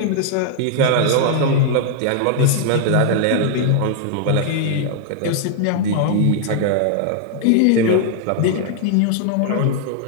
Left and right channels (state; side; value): different; both; correlation -0.01